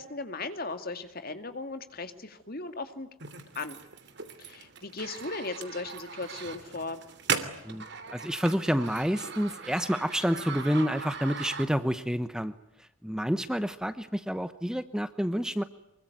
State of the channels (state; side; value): normal; both; correlation 0.76